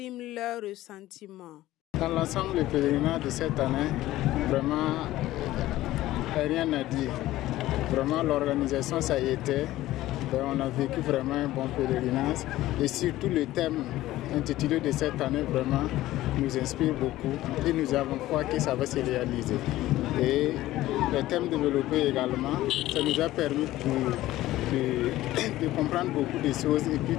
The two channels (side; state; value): right; quieter; 15.7 dB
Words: leur ressentiment. Dans l'ensemble, le pèlerinage de cette année, vraiment, rien à dire. Vraiment, l'organisation, ça y était. On a vécu vraiment un bon pèlerinage. Et surtout, le thème intitulé de cette année, vraiment, nous inspire beaucoup. Et nous avons foi que ça va se réaliser. Et le thème développé également, ça nous a permis de comprendre beaucoup de choses et